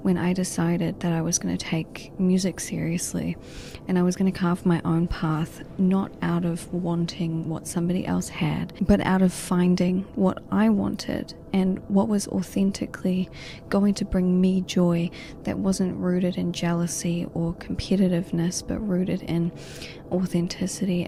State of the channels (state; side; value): identical; both; correlation 1.00